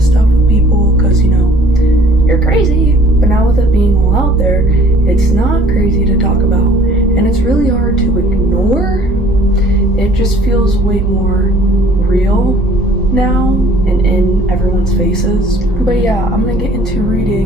stuff with people because, you're crazy. But now with it being all out there, it's not crazy to talk about. And it's really hard to ignore. It just feels way more real now and in everyone's faces. But yeah, I'm gonna get into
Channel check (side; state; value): both; normal; correlation 0.54